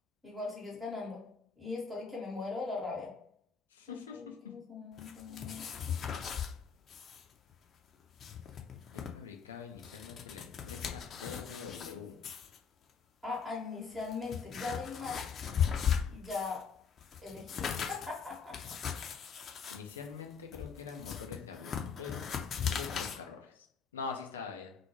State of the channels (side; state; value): right; quieter; 6.2 dB